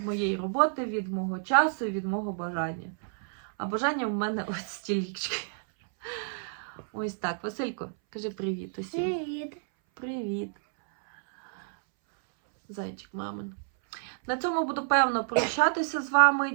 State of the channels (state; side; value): silent; left; 58 dB below the other